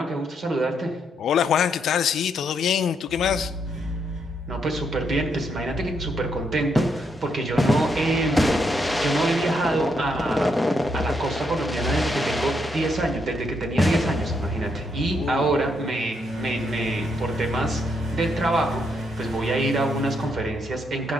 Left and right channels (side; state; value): both; normal; correlation 0.77